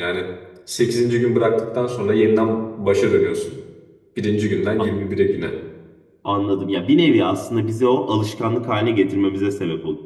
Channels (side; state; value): both; identical; correlation 1.00